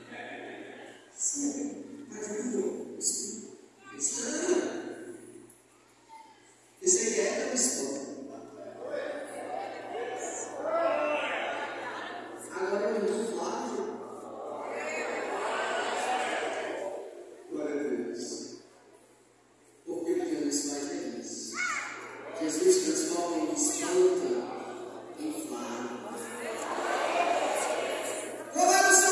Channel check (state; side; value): identical; both; correlation 1.00